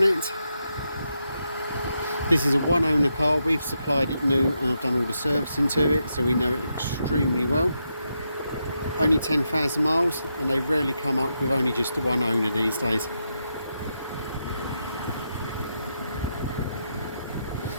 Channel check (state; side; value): inverted; both; correlation -0.83